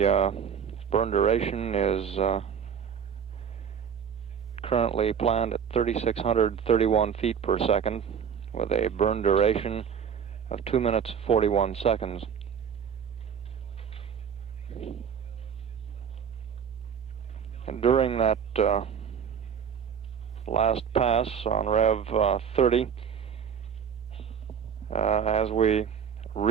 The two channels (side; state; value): left; quieter; 7.6 dB